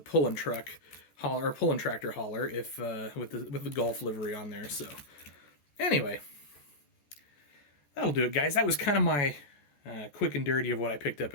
pulling truck hauler or pulling tractor hauler if with the Golf livery on there. So anyway, that'll do it, guys. That was kind of my quick and dirty of what I picked up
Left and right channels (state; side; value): late; right; 14 ms